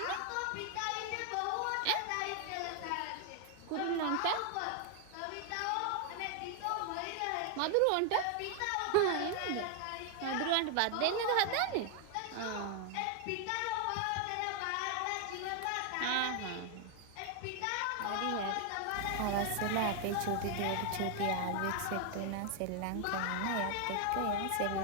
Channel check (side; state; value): both; different; correlation 0.00